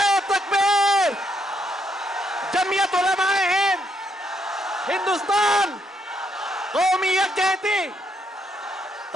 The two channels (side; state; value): both; normal; correlation 0.75